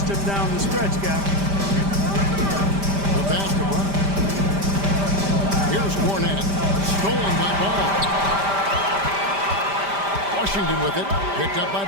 him down the stretch, guys. The basketball. Here's Cornette. Stolen by Ball. Washington with it. Picked up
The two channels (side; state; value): left; late; 5.1 ms